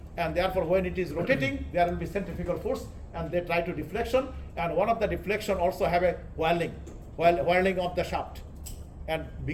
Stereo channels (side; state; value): both; identical; correlation 1.00